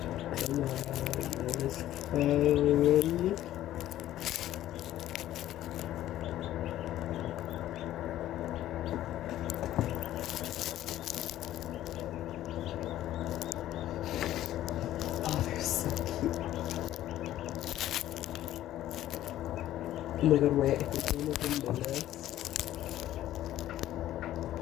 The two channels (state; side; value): quieter; right; 13.4 dB